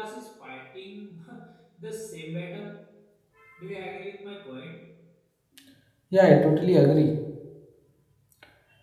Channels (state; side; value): identical; both; correlation 1.00